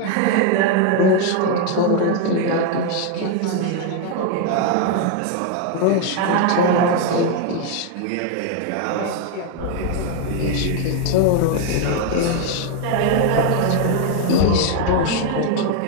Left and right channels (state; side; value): different; both; correlation 0.00